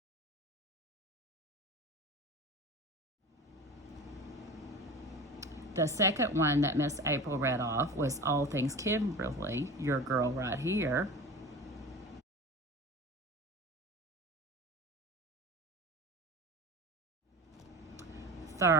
The second one that Miss April read off was All Things Kimberly, your girl right here.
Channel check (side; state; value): both; normal; correlation 0.34